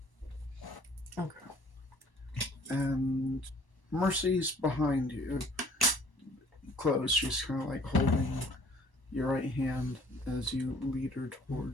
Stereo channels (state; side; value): late; right; 1.1 ms